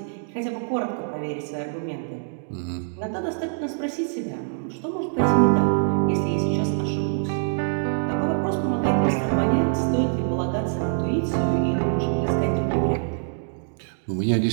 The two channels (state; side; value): silent; left; digital silence